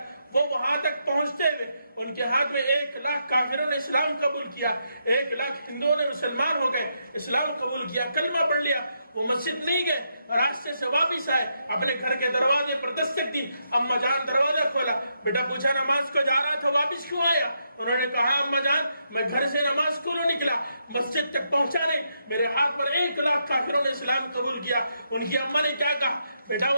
وہ وہاں تک پہنچتے ہوئے ان کے ہاتھ میں 1,00,000 کافروں نے اسلام قبول کیا، 1,00,000 ہندوؤں نے مسلمان ہو گئے، اسلام قبول کیا، کلمہ پڑھ لیا۔ وہ مسجد نہیں گئے، راستے سے واپس آئے، اپنے گھر کے دروازے پر دستک دی، اماں جان دروازہ کھولا، بیٹا پوچھا نماز کو جا رہا تھا واپس کیوں آیا؟ انہوں نے کہا اماں جان میں گھر سے نماز کو نکلا، مسجد تک پہنچا نہیں، میرے ہاتھ پر 1,00,000 کافروں نے اسلام قبول کیا۔ ان کی اماں نے کیا کہا؟ بیٹا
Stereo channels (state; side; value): inverted; both; correlation -0.80